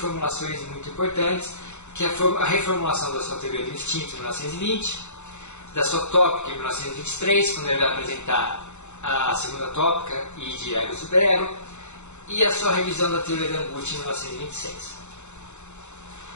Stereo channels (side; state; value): right; late; 0.83 ms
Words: muito importantes, que é a reformulação da sua teoria do instinto em 1920, da sua tópica em 1923, quando ele vai apresentar a segunda tópica e de ego e superego, e a sua revisão da teoria da angústia em 1926.